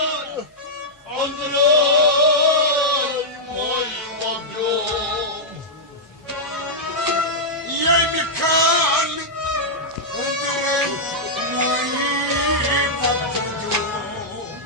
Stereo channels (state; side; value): normal; both; correlation -0.08